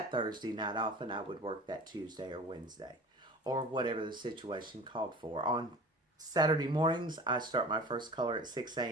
Thursday night off and I would work that Tuesday or Wednesday. Or whatever the situation called for. On Saturday mornings, I start my first color at 6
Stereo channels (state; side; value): normal; both; correlation 0.40